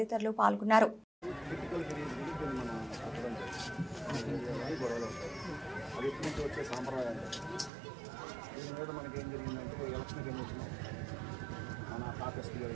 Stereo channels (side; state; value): left; drops out; at 7.7 s